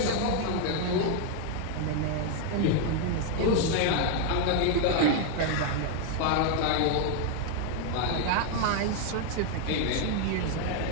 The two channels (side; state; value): both; different; correlation 0.01